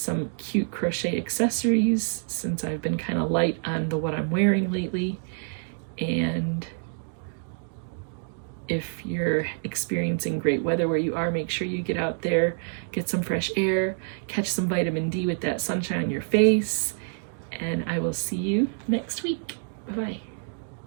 cute crochet accessories since I've been kind of light on what I'm wearing lately. And if you're experiencing great weather where you are, make sure you get out there, get some fresh air, catch some vitamin D with that sunshine on your face, and I will see you next week. Bye-bye.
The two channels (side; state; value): left; silent; digital silence